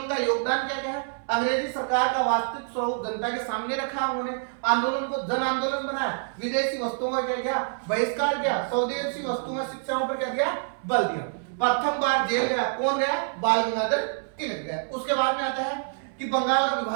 का योगदान क्या क्या है, अंग्रेजी सरकार का वास्तविक स्वरूप जनता के सामने रखा। उन्होंने आंदोलन को जन आंदोलन बनाया, विदेशी वस्तुओं का क्या किया, बहिष्कार किया, स्वदेशी वस्तुओं शिक्षाओं पर क्या दिया, बल दिया। प्रथम बार जेल गया, कौन गया, बाल गंगाधर तिलक गया। उसके बाद में आता है कि बंगाल का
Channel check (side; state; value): left; silent; 60 dB below the other